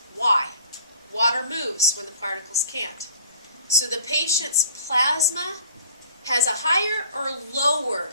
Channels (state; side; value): inverted; both; correlation -0.50